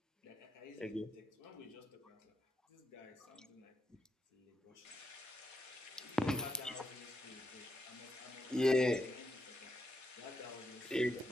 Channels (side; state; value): both; normal; correlation 0.83